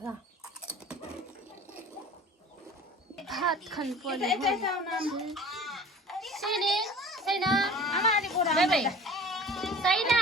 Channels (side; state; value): both; normal; correlation 0.43